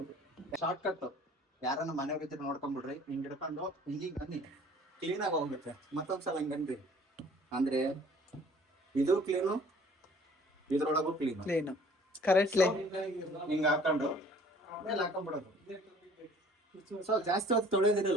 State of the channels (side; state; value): both; normal; correlation 0.53